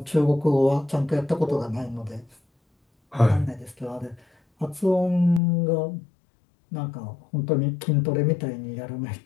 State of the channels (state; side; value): drops out; right; at 5.4 s